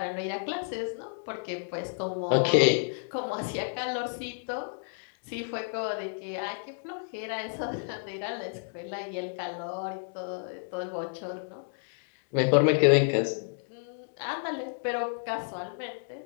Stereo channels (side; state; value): right; silent; digital silence